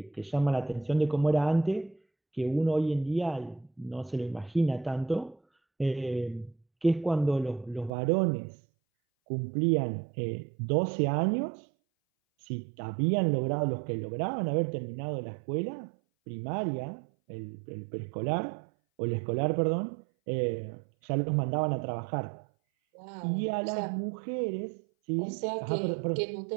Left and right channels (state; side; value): drops out; left; at 7.9 s